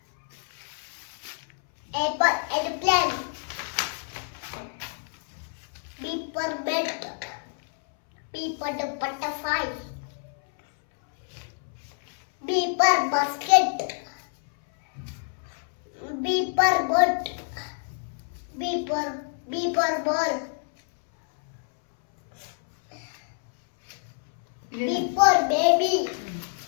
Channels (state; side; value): silent; right; 60 dB below the other